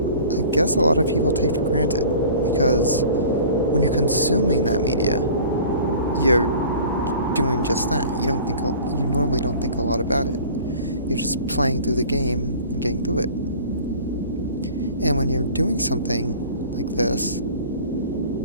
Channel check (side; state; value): both; inverted; correlation -0.44